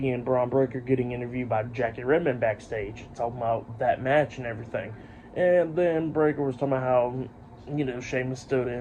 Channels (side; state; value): both; identical; correlation 1.00